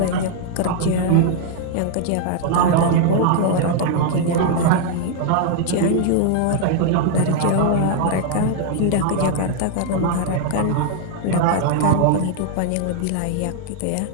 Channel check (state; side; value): different; both; correlation 0.00